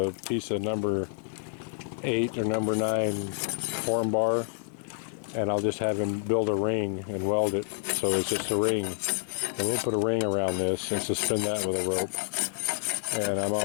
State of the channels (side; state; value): right; silent; 59 dB below the other